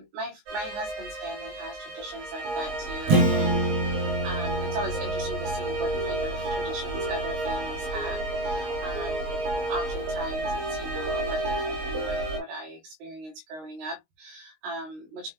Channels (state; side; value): late; left; 19 ms